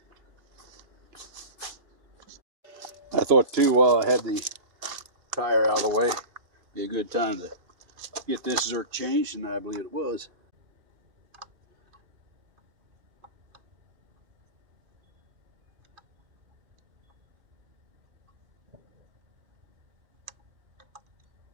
I thought too, while I had the tire out of the way, be a good time to get this zerk changed, and I believe it was.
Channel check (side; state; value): left; late; 2.5 ms